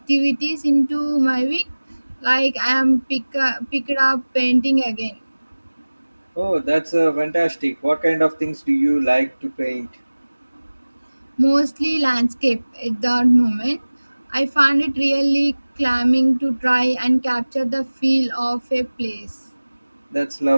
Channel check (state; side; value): inverted; both; correlation -1.00